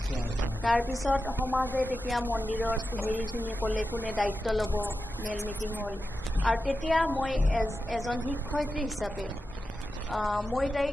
তাৰপিছত সমাজে তেতিয়া মন্দিৰত হেৰিখিনি ক'লে কোনে দায়িত্ব ল'ব মেল মিটিং হ'ল আৰু তেতিয়া মই এজন শিক্ষয়িত্ৰী হিচাপে মই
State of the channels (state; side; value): normal; both; correlation 0.91